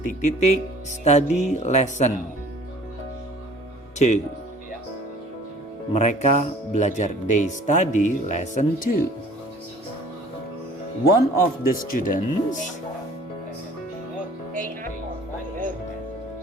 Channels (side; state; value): both; normal; correlation 0.50